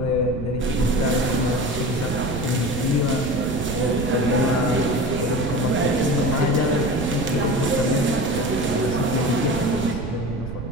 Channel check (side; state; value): right; noise; rumble, 6 dB below the sound